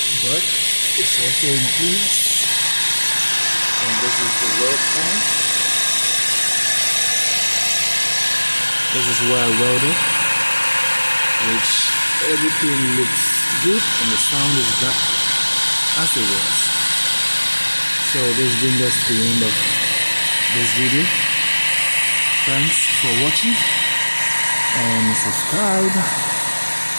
butt is also in place. And this is the weld point. This is where I welded, which everything looks good and the sound is back as it was. So this brings us to the end of this video. Thanks for watching and subscribe.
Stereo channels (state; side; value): inverted; both; correlation -1.00